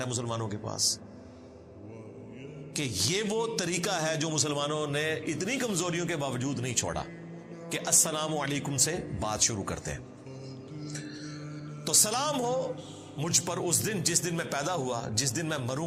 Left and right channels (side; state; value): both; identical; correlation 1.00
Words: مسلمانوں کے پاس، کہ یہ وہ طریقہ ہے جو مسلمانوں نے اتنی کمزوریوں کے باوجود نہیں چھوڑا کہ السلام علیکم سے بات شروع کرتے ہیں۔ تو سلام ہو مجھ پر اس دن جس دن میں پیدا ہوا، جس دن میں